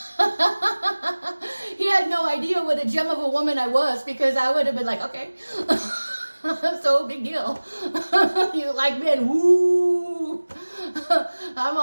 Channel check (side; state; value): both; inverted; correlation -1.00